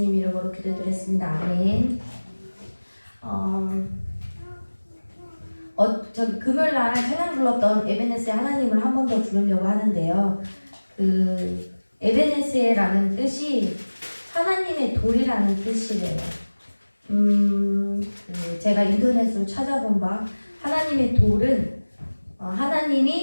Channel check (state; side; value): inverted; both; correlation -1.00